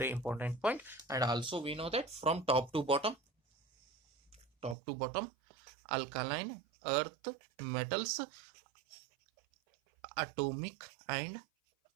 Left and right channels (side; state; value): left; drops out; at 4.8 s